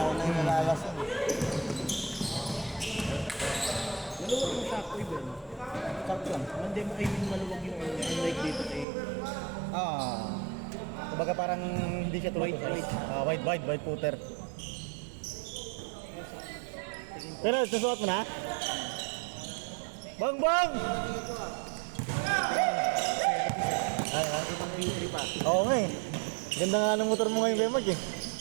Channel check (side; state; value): left; drops out; at 8.8 s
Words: na yung nalalasin. Maluwag mo sa ako iba. Sakto lang. Hindi mo kayo maluwag yung like dito eh. Kumbaga parang hindi siya tulad white footer. Pero susuot mo na? Bang! Oo nga eh. Ganda nga ng motor mo ngayon, Bemag eh.